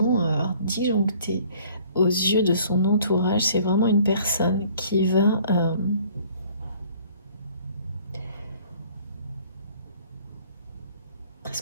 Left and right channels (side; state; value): both; inverted; correlation -0.55